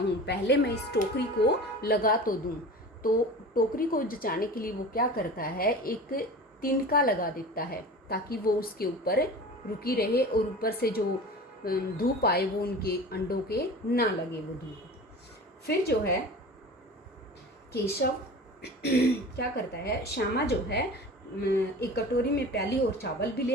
पहले मैं इस टोकरी को लगा तो दूं। तो टोकरी को जचाने के लिए वो क्या करता है, एक तिनका लगा देता है ताकि वो उसके ऊपर रुकी रहे और ऊपर से जो धूप आए वो उनके अंडों के ना लगे वो धूप। फिर जो है केशव क्या करता है, श्यामा जो है एक कटोरी में प्याली और चावल भी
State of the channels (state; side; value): normal; both; correlation 0.36